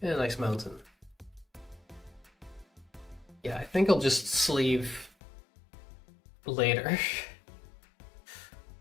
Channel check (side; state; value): right; drops out; at 5.1 s